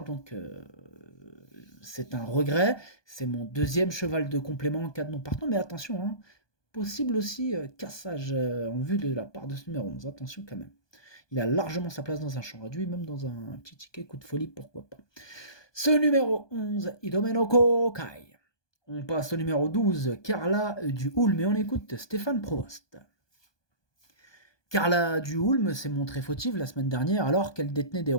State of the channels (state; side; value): late; right; 1.2 ms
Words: donc c'est un regret. C'est mon deuxième cheval de complément en cas de non partant, mais attention, possible aussi cassage en vue de la part de ce numéro 11. Attention quand même. Il a largement sa place dans un champ réduit, même dans un petit ticket coup de folie, pourquoi pas. Ce numéro 11, Idomeno Kokai. On passe au numéro 12, Carla du Hulme, et on écoute Stéphane Provost. Carla du Hulme s'est montrée fautive la semaine dernière alors qu'elle détenait des